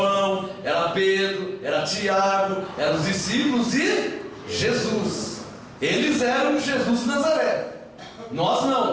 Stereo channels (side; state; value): both; identical; correlation 1.00